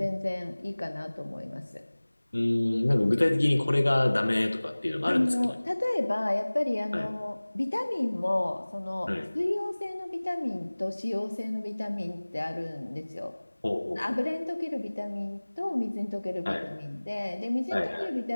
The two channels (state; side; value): inverted; both; correlation -1.00